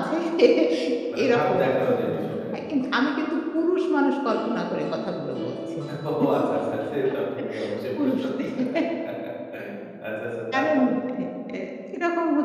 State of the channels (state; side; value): identical; both; correlation 1.00